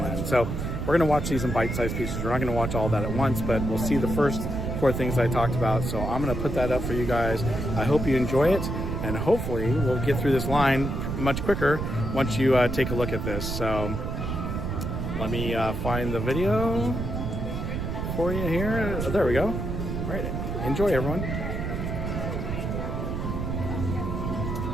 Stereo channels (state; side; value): noise; right; rumble, 3 dB below the sound